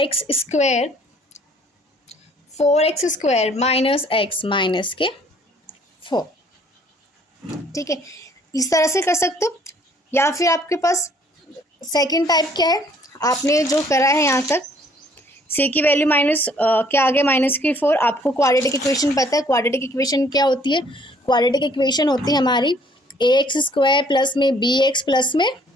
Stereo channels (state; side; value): normal; both; correlation 0.60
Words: square 4x square minus x minus के 4। ठीक है, इस तरह से कर सकते हो। या फिर आपके पास सेकंड टाइप क्या है, आपने जो करा है यहाँ तक c की वैल्यू माइनस क्या आ गया माइनस की 4। आपको क्वाड्रेटिक इक्वेशन पता है, क्वाड्रेटिक इक्वेशन क्या होती है, क्वाड्रेटिक इक्वेशन होती है हमारी ax स्क्वायर प्लस में bx प्लस में